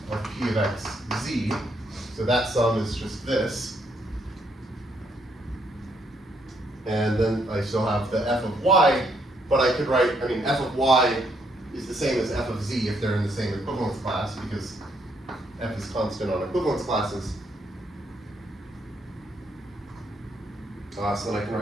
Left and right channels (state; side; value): normal; both; correlation 0.73